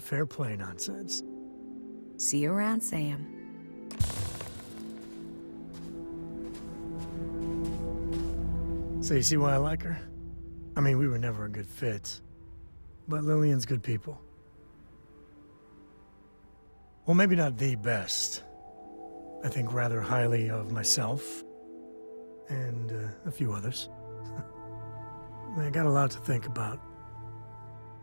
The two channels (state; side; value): inverted; both; correlation -1.00